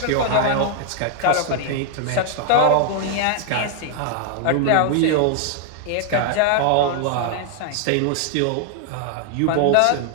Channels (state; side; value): different; both; correlation 0.00